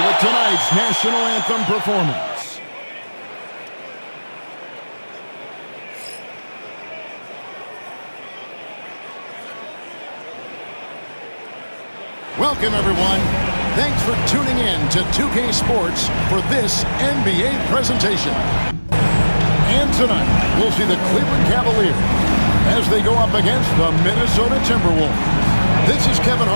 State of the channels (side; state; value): both; inverted; correlation -1.00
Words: with tonight's national anthem performance. Welcome, everyone. Thanks for tuning in to 2K Sports for this NBA presentation. And tonight, we'll see the Cleveland Cavaliers as they go up against the Minnesota Timberwolves. This is Kevin